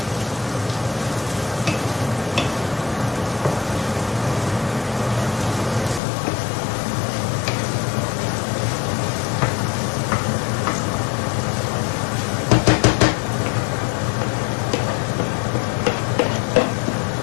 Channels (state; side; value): drops out; right; at 6.0 s